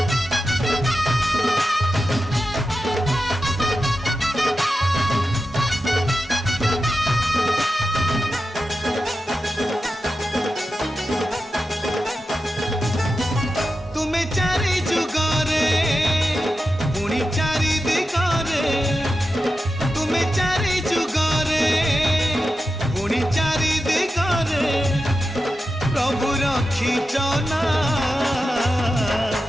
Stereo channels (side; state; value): both; normal; correlation 0.91